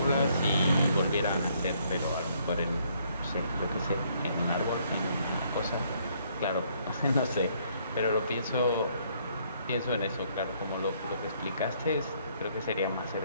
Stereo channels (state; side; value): inverted; both; correlation -0.67